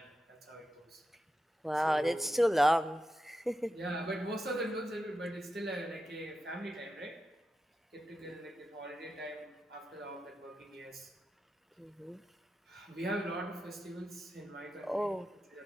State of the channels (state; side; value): normal; both; correlation 0.89